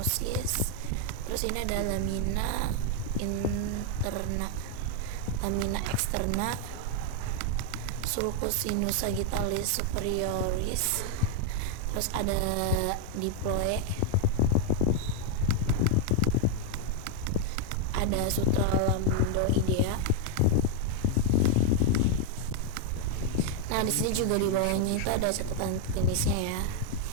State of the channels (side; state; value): both; different; correlation 0.00